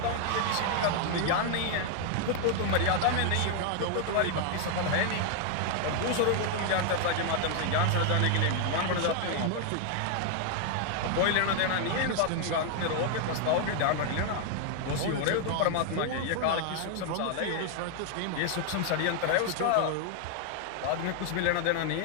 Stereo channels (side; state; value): both; different; correlation 0.00